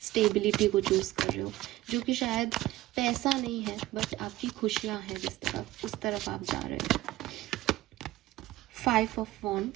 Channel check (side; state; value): left; quieter; 16.4 dB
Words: स्टेबिलिटी को चूज़ कर रहे हो, जो कि शायद पैसा नहीं है बट आपकी खुशियाँ हैं जिस तरफ, उस तरफ आप जा रहे हो। 5 of